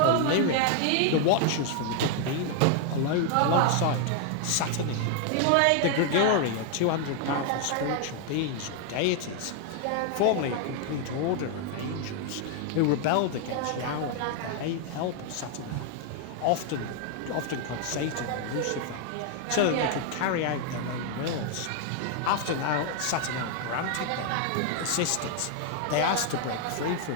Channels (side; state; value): both; different; correlation 0.00